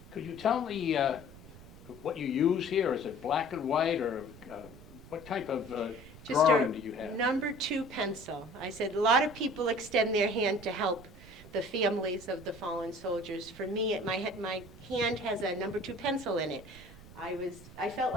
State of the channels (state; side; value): noise; right; rumble, 18 dB below the sound